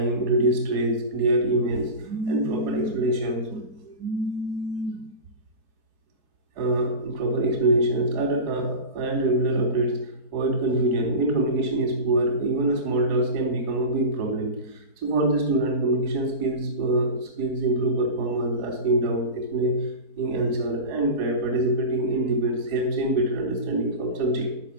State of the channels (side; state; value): left; late; 4.9 ms